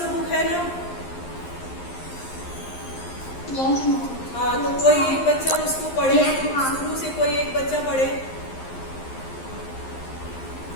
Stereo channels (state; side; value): late; right; 11 ms